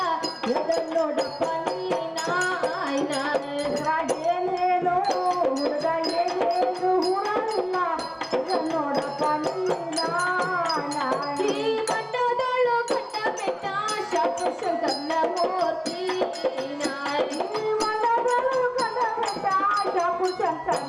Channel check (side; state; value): both; identical; correlation 1.00